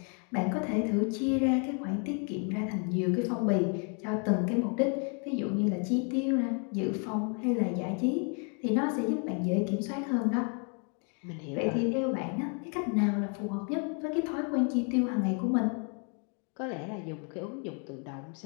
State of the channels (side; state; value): right; quieter; 39.4 dB